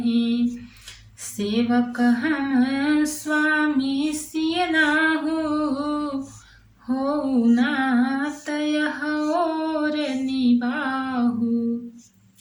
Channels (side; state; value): both; identical; correlation 1.00